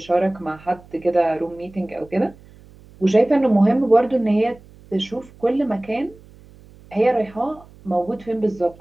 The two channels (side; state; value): right; noise; hum, 24 dB below the sound